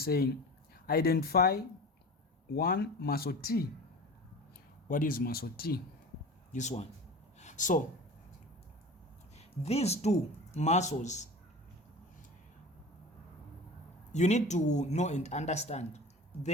saying identify one muscle T. What is muscle T? This one. So these two muscles you need to know and understand.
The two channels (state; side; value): normal; both; correlation 0.35